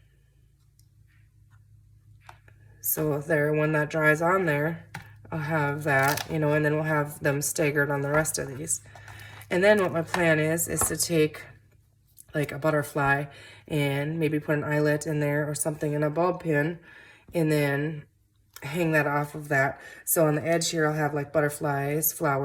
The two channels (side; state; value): both; identical; correlation 1.00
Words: So there, when that dries on there, I'll have that, and then we'll have them staggered on the rest of these. And then what my plan is to take like a butterfly and maybe put an eyelet in there or something in a bulb pin, and then hang that off of that. So on the edge here, I'll have like butterflies,